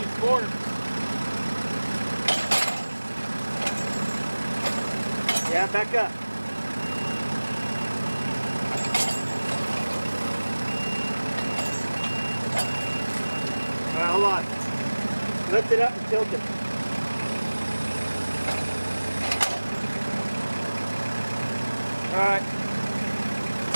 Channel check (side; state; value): both; inverted; correlation -1.00